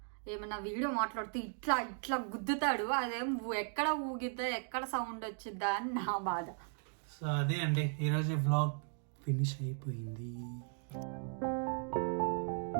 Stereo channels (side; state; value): left; silent; 53 dB below the other